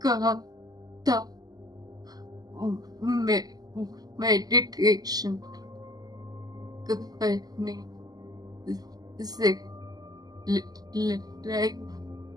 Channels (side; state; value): left; late; 0.19 ms